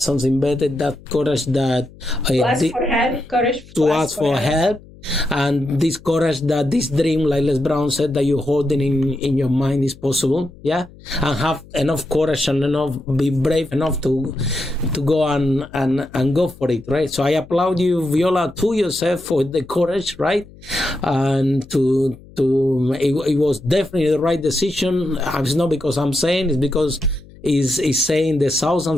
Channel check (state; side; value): noise; left; hum, 22 dB below the sound